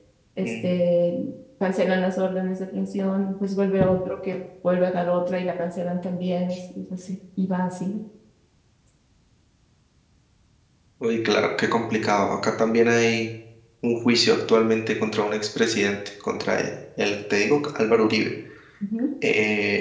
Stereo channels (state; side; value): identical; both; correlation 1.00